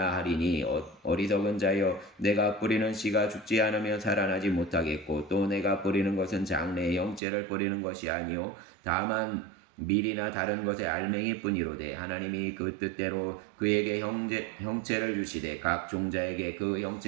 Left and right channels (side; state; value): left; drops out; at 7.2 s